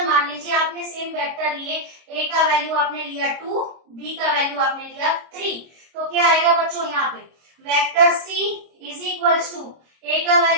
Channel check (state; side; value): late; left; 26 ms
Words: मान लीजिए, आपने सेम वेक्टर लिए, a का वैल्यू आपने लिया 2, b का वैल्यू आपने लिया 3, तो क्या आएगा बच्चों, यहाँ पे vector c is equals to a का